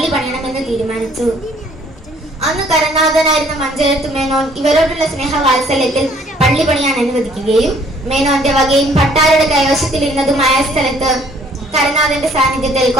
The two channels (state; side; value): normal; both; correlation 0.60